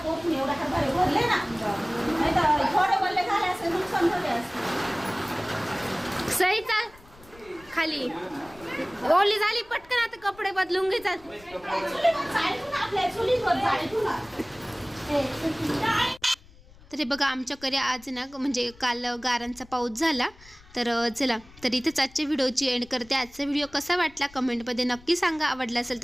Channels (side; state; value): left; noise; rumble, 24 dB below the sound